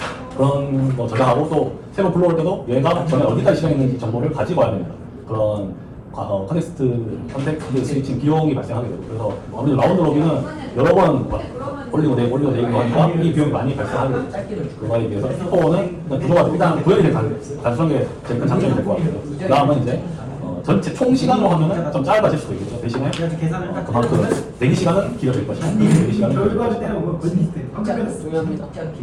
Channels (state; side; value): identical; both; correlation 1.00